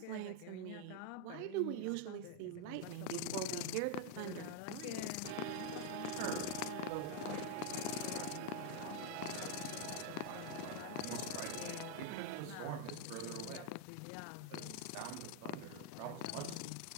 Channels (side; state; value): both; different; correlation 0.00